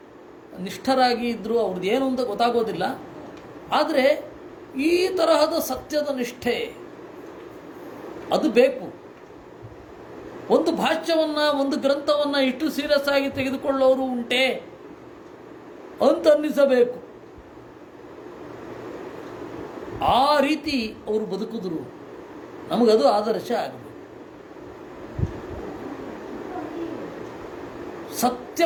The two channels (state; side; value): identical; both; correlation 1.00